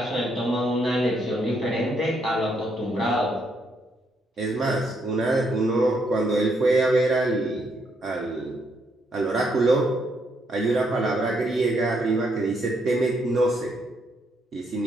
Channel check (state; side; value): normal; both; correlation 0.75